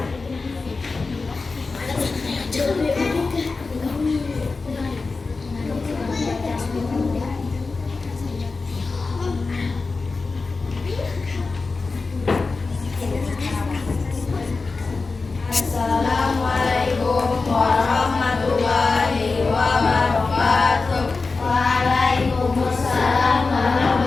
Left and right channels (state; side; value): quieter; right; 4.0 dB